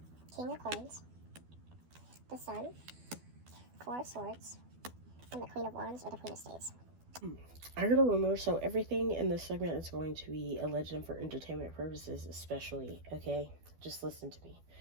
King of Coins, the Sun, Four of Swords, and the Queen of Wands or the Queen of Spades. I heard a rumor, so everything in this segment is going to be a legend for entertainment purposes, especially, okay? Just listen to me.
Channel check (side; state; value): left; late; 12 ms